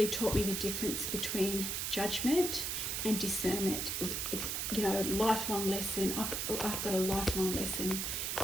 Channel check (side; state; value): right; noise; hiss, 1 dB below the sound